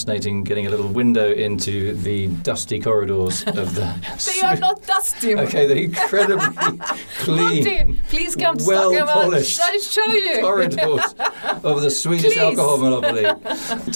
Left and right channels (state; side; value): inverted; both; correlation -1.00